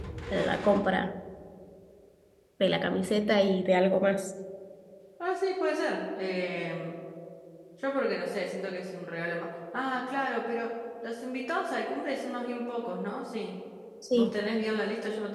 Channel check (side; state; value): both; identical; correlation 1.00